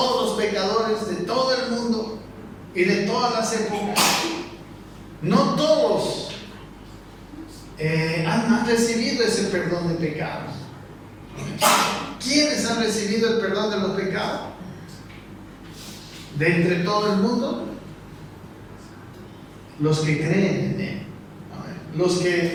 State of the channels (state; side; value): identical; both; correlation 1.00